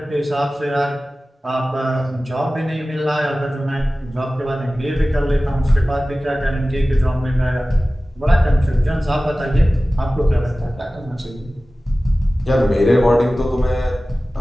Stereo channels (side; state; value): both; normal; correlation 0.96